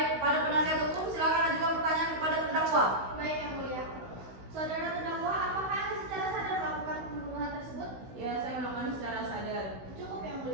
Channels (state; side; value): late; left; 16 ms